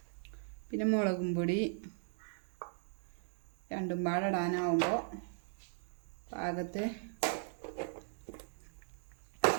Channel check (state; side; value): silent; left; 52 dB below the other